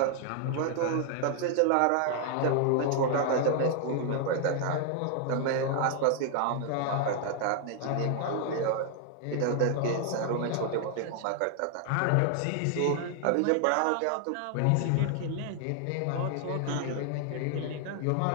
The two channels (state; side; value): different; both; correlation 0.00